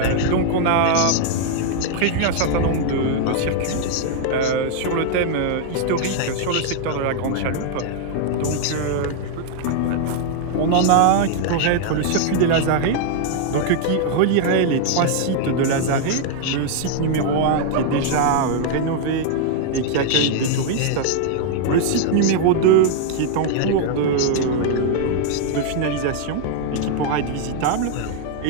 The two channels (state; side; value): different; both; correlation 0.00